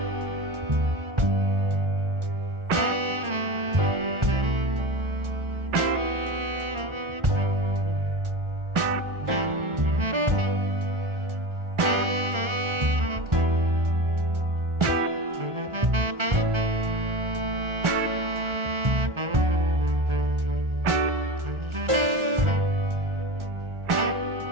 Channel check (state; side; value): late; left; 1.4 ms